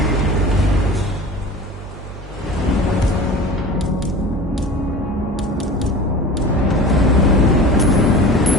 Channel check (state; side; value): normal; both; correlation 0.37